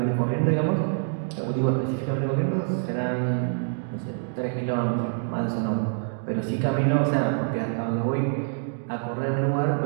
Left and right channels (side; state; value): left; silent; digital silence